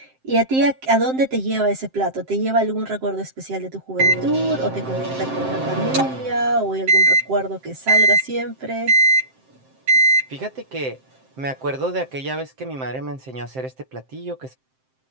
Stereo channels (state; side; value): late; left; 7.6 ms